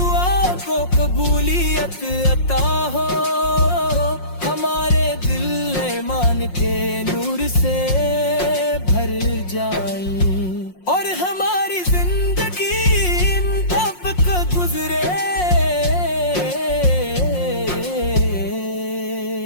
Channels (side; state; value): right; late; 5.6 ms